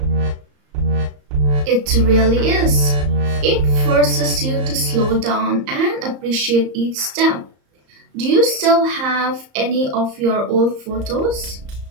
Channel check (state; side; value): late; left; 34 ms